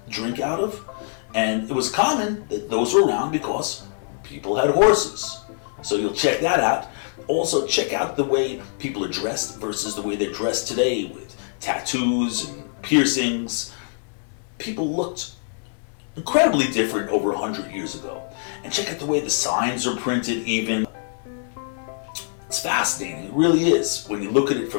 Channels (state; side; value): silent; right; 62 dB below the other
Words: drink out of. And it was common that those were around because people had horses. So you'll check that out. Also, check out the way people are dressed versus the way they're dressed today with tattoos and piercings. People looked incredibly different over 100 years ago. And check out the way the signs are printed even. It's fascinating, it really is, when you look at it